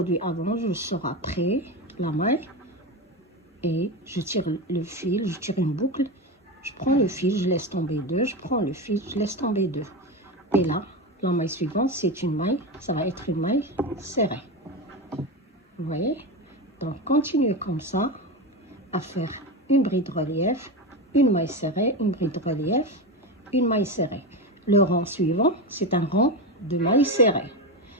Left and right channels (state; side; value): normal; both; correlation 0.18